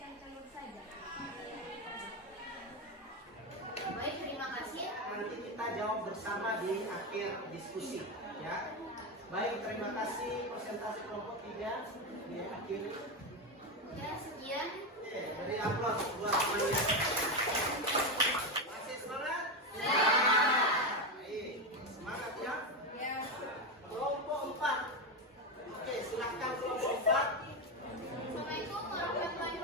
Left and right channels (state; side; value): normal; both; correlation 0.13